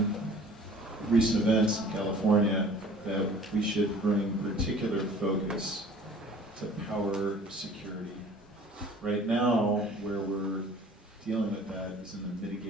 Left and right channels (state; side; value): normal; both; correlation 0.49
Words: recent events in California, that we should bring particular focus to power security. Right now, where we're dealing with that is in the